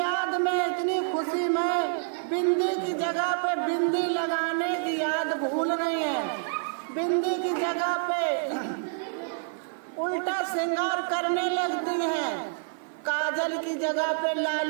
में इतनी खुशी में बिंदी की जगह पे बिंदी लगाने की याद भूल रही है। बिंदी की जगह पे उल्टा श्रृंगार करने लगती हैं। काजल की जगह पे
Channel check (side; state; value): left; silent; 60 dB below the other